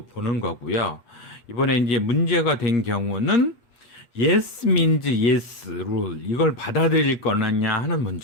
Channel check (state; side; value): late; right; 8.1 ms